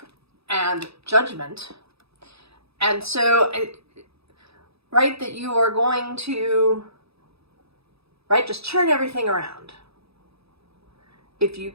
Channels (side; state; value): left; late; 0.78 ms